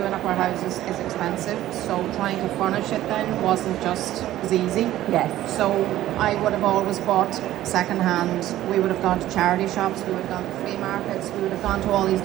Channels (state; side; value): quieter; left; 14.0 dB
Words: up our houses is expensive, so trying to furnish it then wasn't just as easy. Yes. So I would have always bought second hand. We would have gone to charity shops, we would have gone to flea markets, we would have gone to all these